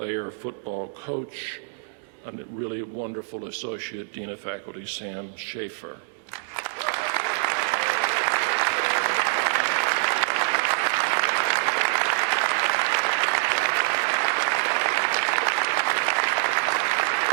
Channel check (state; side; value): silent; left; digital silence